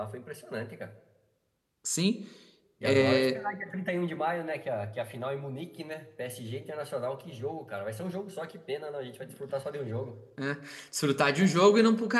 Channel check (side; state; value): both; identical; correlation 1.00